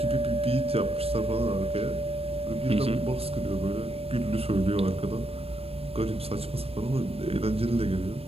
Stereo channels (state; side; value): late; left; 0.28 ms